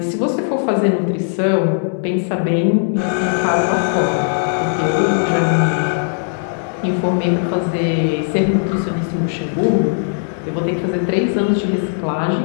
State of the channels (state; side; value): silent; right; 64 dB below the other